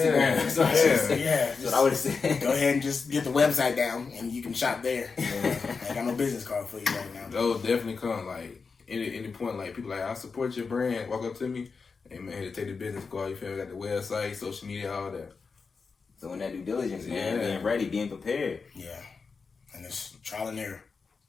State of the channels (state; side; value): quieter; right; 4.9 dB